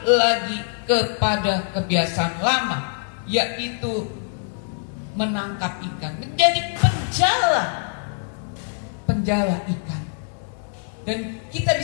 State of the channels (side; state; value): right; silent; digital silence